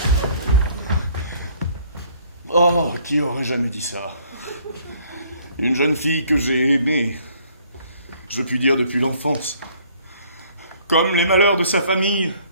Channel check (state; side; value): inverted; both; correlation -0.60